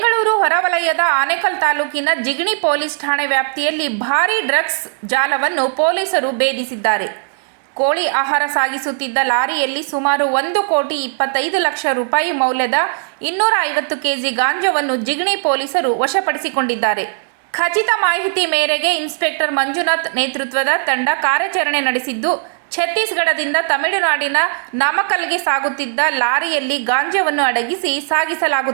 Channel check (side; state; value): left; silent; digital silence